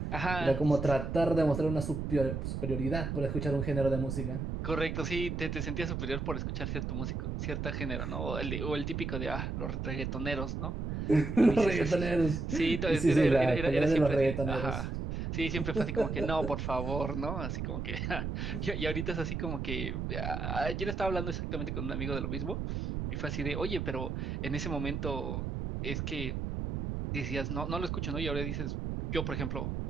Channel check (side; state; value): right; noise; rumble, 3 dB below the sound